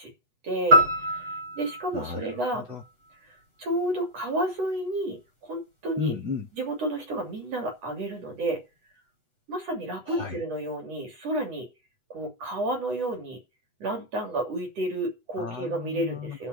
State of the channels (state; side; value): late; left; 8.1 ms